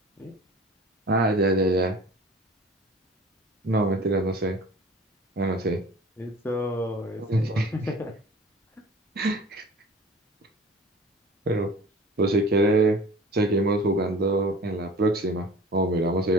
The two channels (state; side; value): normal; both; correlation 0.43